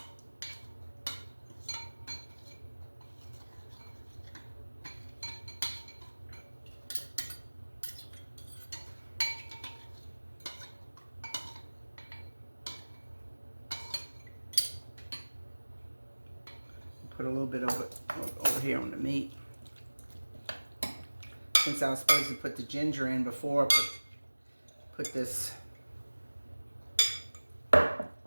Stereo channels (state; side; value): inverted; both; correlation -1.00